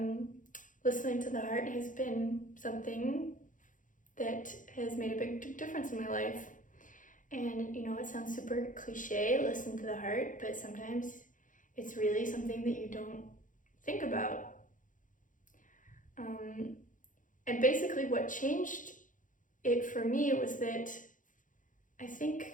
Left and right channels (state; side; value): late; right; 0.38 ms